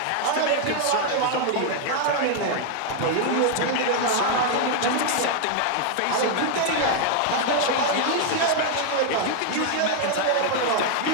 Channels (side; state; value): both; different; correlation 0.00